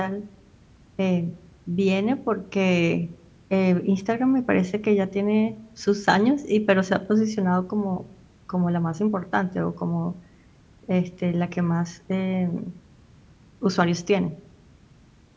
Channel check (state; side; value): identical; both; correlation 1.00